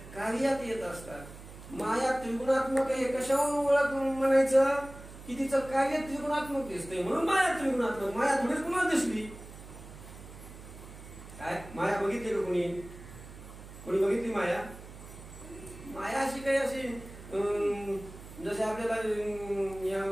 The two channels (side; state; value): right; noise; hum, 15 dB below the sound